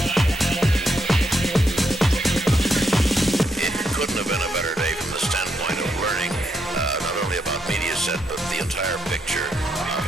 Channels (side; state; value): both; normal; correlation 0.79